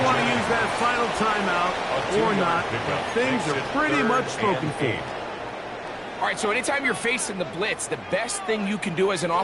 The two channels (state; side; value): identical; both; correlation 1.00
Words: want to use that final timeout or not. Things are pretty much spoken for. All right, so anytime you're facing the blitz, the best thing you can do as an